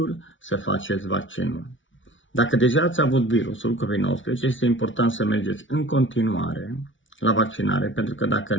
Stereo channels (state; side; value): late; right; 0.56 ms